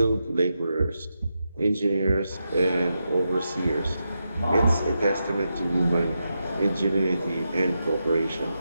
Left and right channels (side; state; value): both; inverted; correlation -0.87